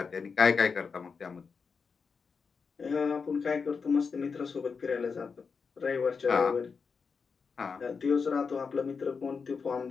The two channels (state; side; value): quieter; right; 5.4 dB